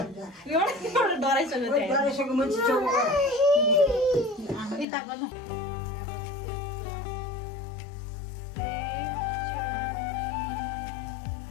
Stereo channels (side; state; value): right; drops out; at 4.9 s